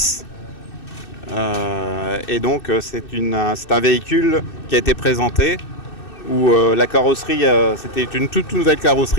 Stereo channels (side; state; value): right; late; 2.6 ms